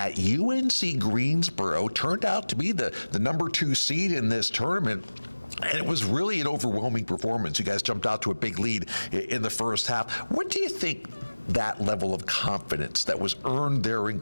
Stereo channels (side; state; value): both; inverted; correlation -1.00